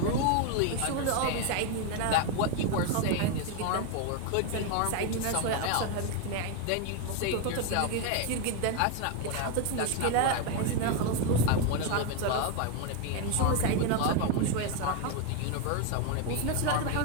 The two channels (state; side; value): different; both; correlation 0.01